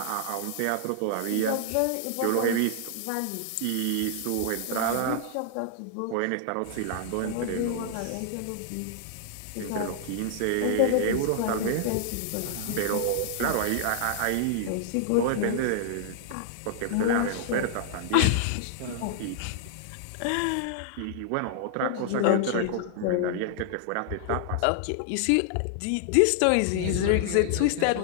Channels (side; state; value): both; different; correlation -0.01